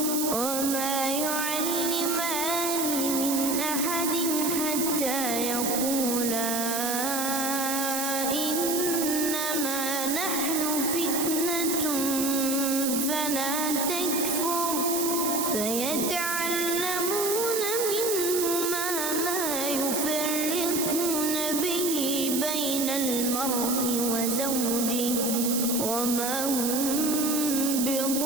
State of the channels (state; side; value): noise; right; hiss, 1 dB below the sound